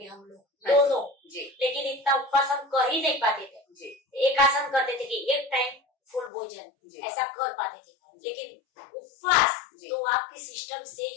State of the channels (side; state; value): right; drops out; at 6.3 s